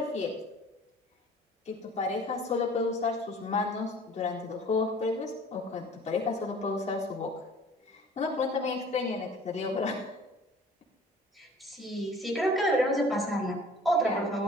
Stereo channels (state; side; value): normal; both; correlation 0.48